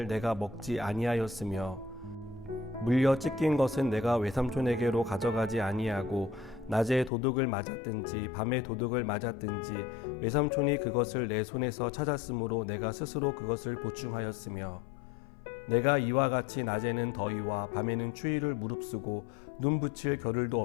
내가 먹지 아니하였으며 물려 찢긴 것은 내가 외삼촌에게로 가져가지 아니하고 낮에 도둑을 맞았든지 밤에 도둑을 맞았든지 외삼촌이 그것을 내 손에서 찾았으므로 내가 스스로 그것을 보충하였으며 내가 이와 같이 낮에는 더위와 밤에는 추위를 무릅쓰고 눈 붙일 겨를도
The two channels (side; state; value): right; drops out; at 7.1 s